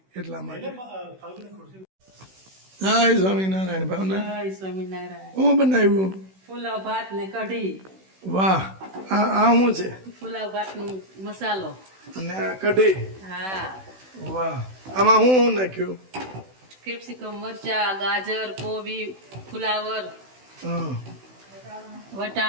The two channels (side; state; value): left; late; 16 ms